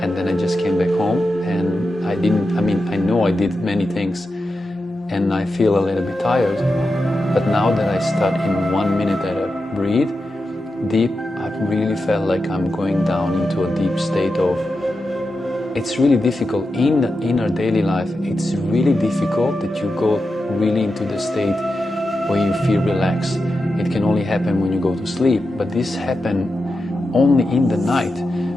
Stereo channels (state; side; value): normal; both; correlation 0.90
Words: and then I just came back home, and I know I did many things, and I feel a little bit tired. But now that I start in 1 minute that I breathe deep, I really felt like I'm going down into a deep state of, it's really difficult in our daily life. It's really difficult that you go really into the state where you feel relaxed. It can only happen when you go to sleep, but this happens only in the night.